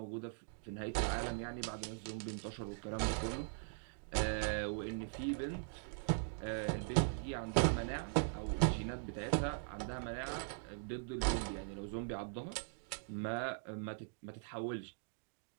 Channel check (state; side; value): silent; left; digital silence